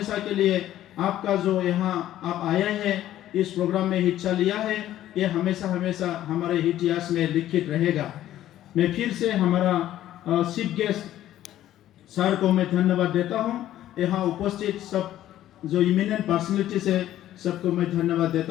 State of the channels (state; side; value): quieter; right; 12.9 dB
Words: के लिए आपका जो यहाँ आप आए हैं, इस प्रोग्राम में हिस्सा लिया है, ये हमेशा हमेशा हमारे इतिहास में लिखित रहेगा। मैं फिर से हमारा चीफ गेस्ट सर को मैं धन्यवाद देता हूँ। यहाँ उपस्थित सब जो इमिनेंट पर्सनैलिटीज है, सबको मैं धन्यवाद